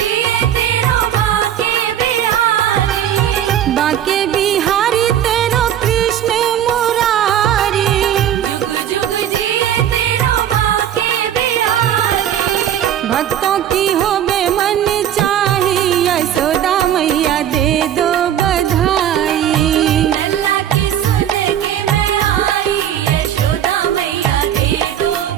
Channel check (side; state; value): left; quieter; 10.4 dB